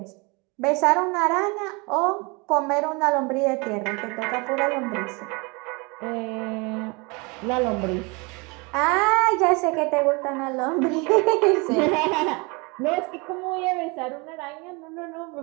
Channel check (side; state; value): left; quieter; 28.7 dB